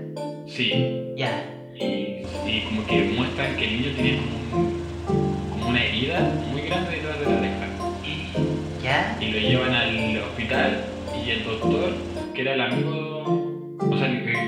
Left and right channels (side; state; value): both; identical; correlation 1.00